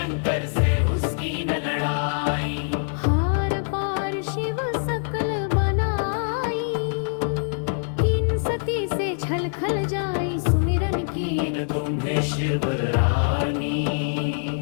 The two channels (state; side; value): silent; right; digital silence